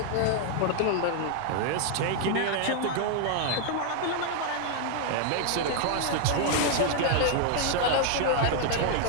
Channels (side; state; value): both; different; correlation 0.00